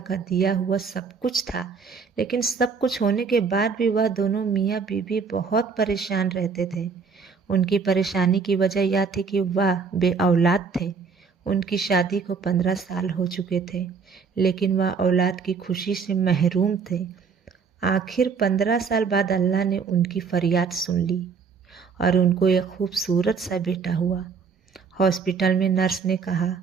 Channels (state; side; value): quieter; left; 5.5 dB